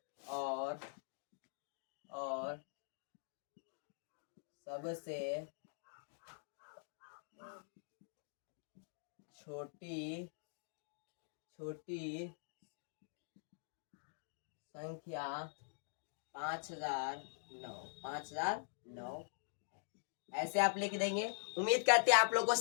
और सबसे छोटी संख्या 5009। ऐसे आप लिख देंगे। उम्मीद करते हैं आप लोग को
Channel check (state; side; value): silent; right; digital silence